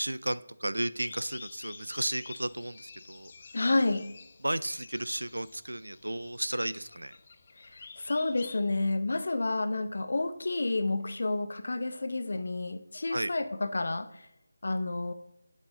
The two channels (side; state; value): both; inverted; correlation -0.97